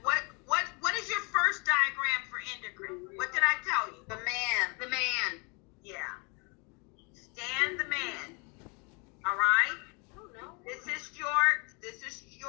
what is your first diagram for endocrine? What did I tell you? The man. The man. Yeah. Stan the man. All right. Oh no. This is your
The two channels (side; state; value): right; quieter; 31.6 dB